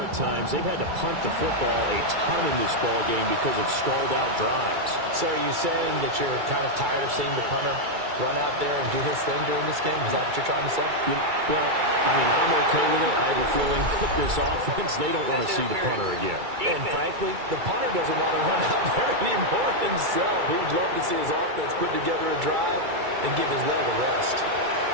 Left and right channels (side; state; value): left; late; 2.3 ms